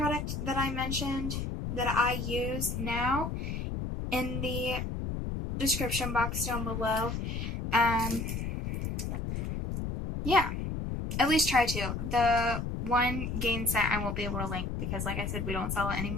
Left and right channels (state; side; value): noise; left; rumble, 3 dB below the sound